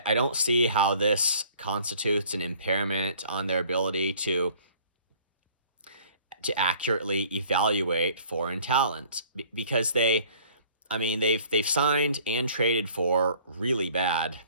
see how this constitutes an impairment on their ability to accurately evaluate foreign talent, because they've signed and traded for really bad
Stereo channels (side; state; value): both; inverted; correlation -0.54